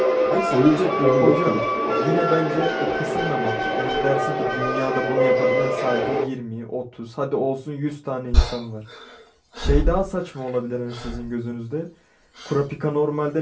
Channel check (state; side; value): identical; both; correlation 1.00